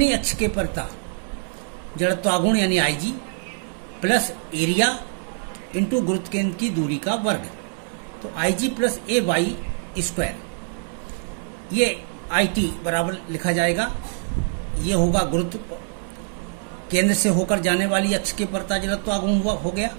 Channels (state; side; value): silent; left; digital silence